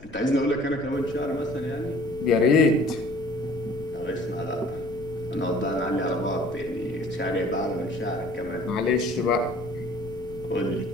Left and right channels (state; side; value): noise; left; rumble, 17 dB below the sound